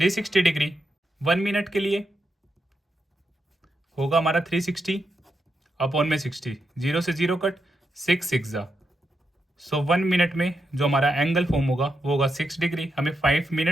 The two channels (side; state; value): both; normal; correlation 0.84